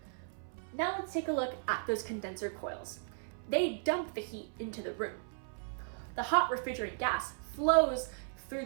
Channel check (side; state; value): left; silent; 54 dB below the other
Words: Now let's take a look at those condenser coils. They dump the heat into the room. The hot refrigerant gas flows through